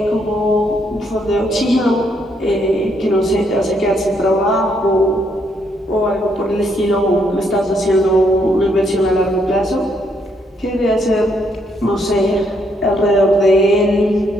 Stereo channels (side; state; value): both; normal; correlation 0.73